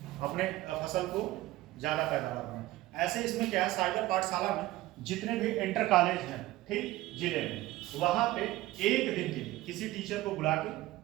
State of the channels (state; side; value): quieter; left; 17.1 dB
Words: अपने फसल को ज़्यादा पैदावार बनाएं। ऐसे इसमें क्या है, साइबर पाठशाला में जितने भी इंटर कॉलेज हैं, ठीक, जिले में, वहाँ पे एक दिन के लिए किसी टीचर को बुला के,